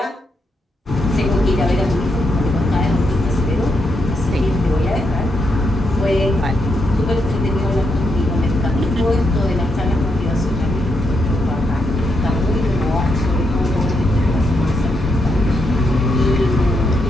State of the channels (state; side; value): normal; both; correlation 0.80